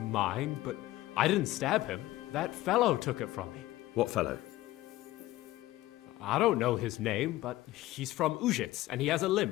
but I didn't stab him. That fellow took it from me. What fellow? I don't know his name, but he's from Ujits, and he has a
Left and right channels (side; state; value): right; quieter; 16.6 dB